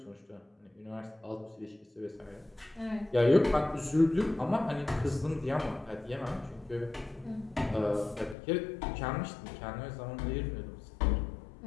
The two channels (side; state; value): right; drops out; at 8.3 s